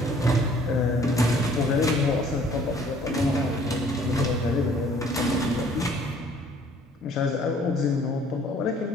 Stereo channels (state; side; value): normal; both; correlation 0.57